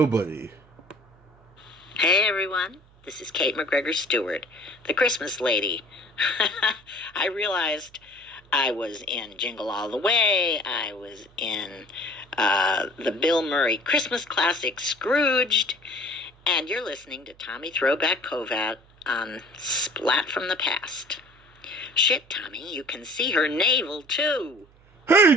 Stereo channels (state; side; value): noise; right; hum, 28 dB below the sound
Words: Hey everyone, this is Kate McGregor Stewart, the Christmas lady. I realized I was in Jingle All the Way, I was in the Bill Murray Christmas classic Scrooged, and you're listening to Tommy Throwback Kovac on Splat from the Past. Shit, Tommy, you can see her navel too.